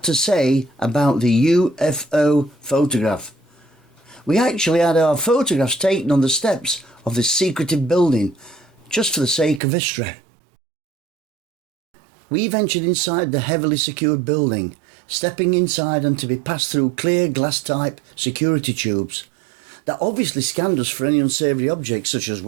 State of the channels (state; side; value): drops out; left; at 9.6 s